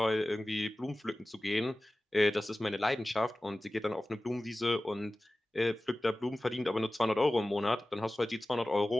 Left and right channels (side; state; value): both; normal; correlation 0.96